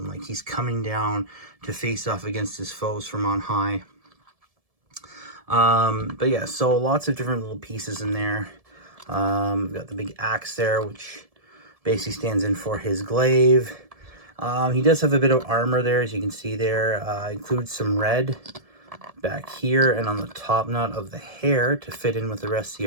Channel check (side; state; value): left; late; 1.7 ms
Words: Like he's coming down to face off against his foes from on high. But yeah, so lots of different little pieces in there. We've got the big axe there, which basically stands in for his glaive. He does have a bit of armor there, as you can see there. Includes some red back here and on the top knot of the hair to fit in with the rest of